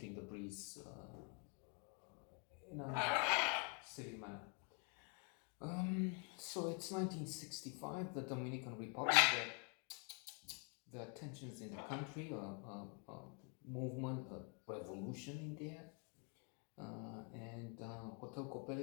the breeze in a silly manner. So it's 1965, the Dominican Republic. The tensions in the country, a movement, a revolution in there. And Hotel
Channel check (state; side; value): quieter; right; 37.4 dB